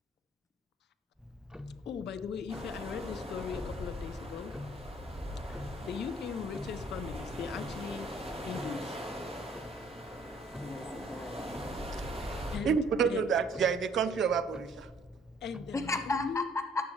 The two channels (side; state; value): both; normal; correlation 0.60